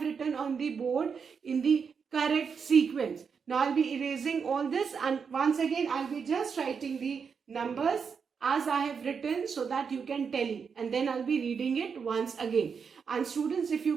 written on the board in the correct sequence. Now I'll be erasing all this, and once again I'll be just writing the numbers as I have written so that you can tally, and then I'll be reading it once again. And students, if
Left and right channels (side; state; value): left; quieter; 6.1 dB